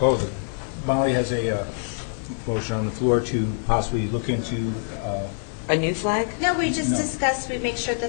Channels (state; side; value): silent; right; digital silence